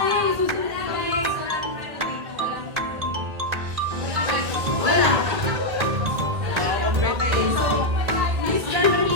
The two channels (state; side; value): late; left; 1.8 ms